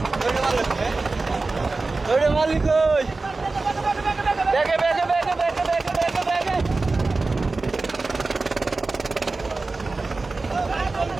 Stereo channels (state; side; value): quieter; left; 3.6 dB